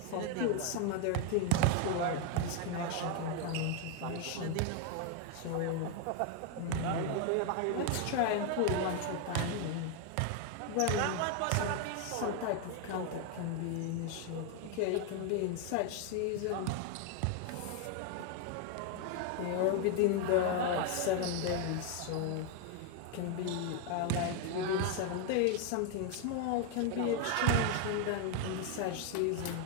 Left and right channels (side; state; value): both; different; correlation 0.01